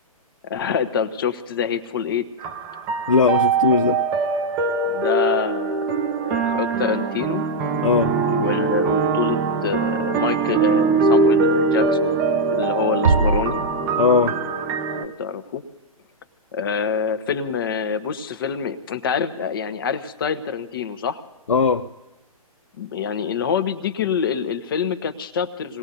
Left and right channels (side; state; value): both; normal; correlation -0.05